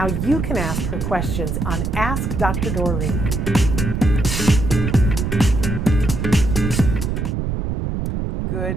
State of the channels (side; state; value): right; noise; rumble, 2 dB below the sound